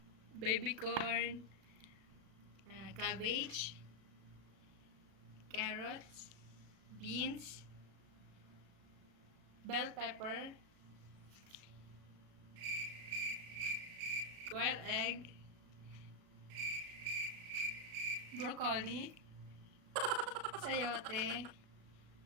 baby corn, cabbage, carrots, beans, bell pepper, quail egg, broccoli, sayote,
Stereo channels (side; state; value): left; late; 36 ms